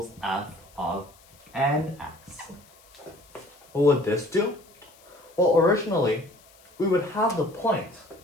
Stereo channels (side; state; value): left; noise; hiss, 27 dB below the sound